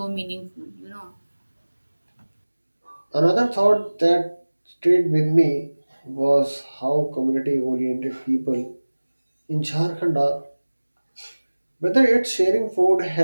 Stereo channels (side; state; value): both; inverted; correlation -1.00